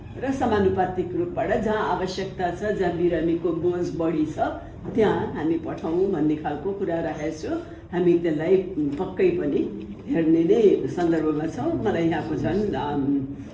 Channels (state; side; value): identical; both; correlation 1.00